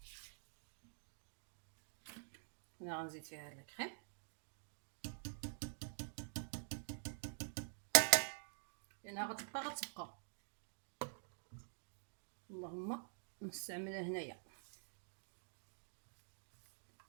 هنا غنزيد فيها هاد الكريم، لانها غتبقى اللهم نستعملها هنايا.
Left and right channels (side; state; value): left; silent; digital silence